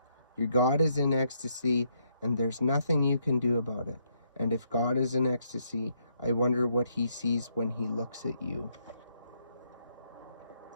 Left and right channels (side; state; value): both; inverted; correlation -0.74